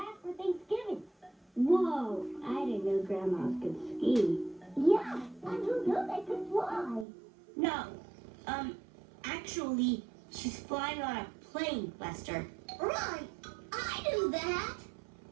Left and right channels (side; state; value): left; drops out; at 7.1 s